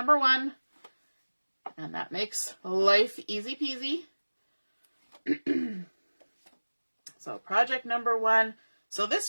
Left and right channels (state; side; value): inverted; both; correlation -1.00